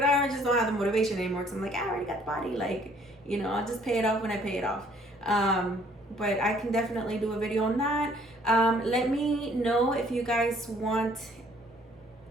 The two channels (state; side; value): normal; both; correlation 0.60